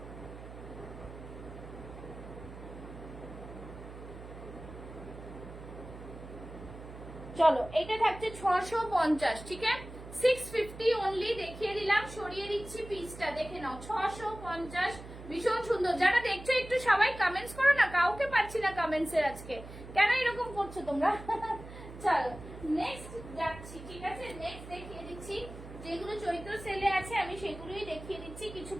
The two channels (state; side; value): noise; right; hum, 14 dB below the sound